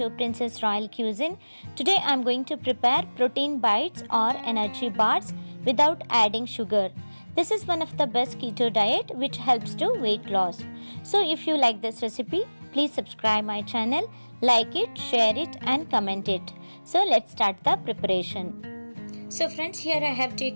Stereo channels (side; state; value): both; inverted; correlation -1.00